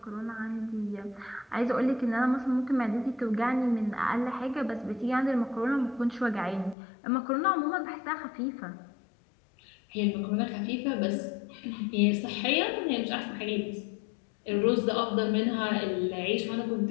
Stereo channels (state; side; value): drops out; right; at 6.8 s